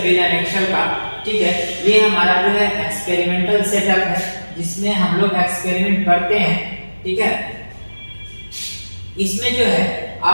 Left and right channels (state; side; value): inverted; both; correlation -1.00